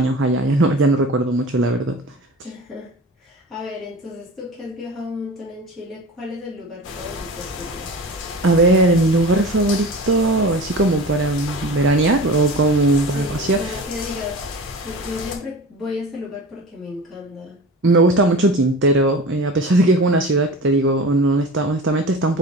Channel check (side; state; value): both; normal; correlation 0.35